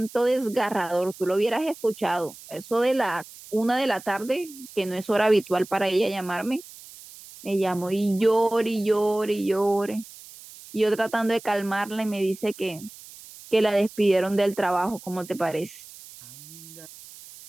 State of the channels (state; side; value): noise; right; hiss, 18 dB below the sound